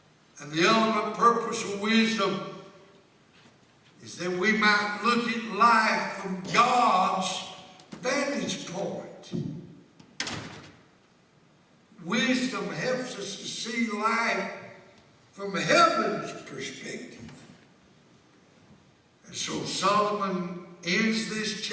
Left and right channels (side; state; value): both; identical; correlation 1.00